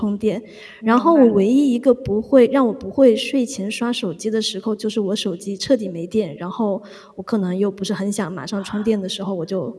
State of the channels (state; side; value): identical; both; correlation 1.00